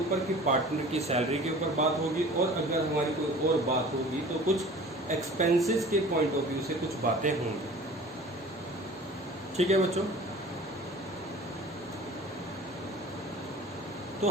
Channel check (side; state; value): both; normal; correlation 0.43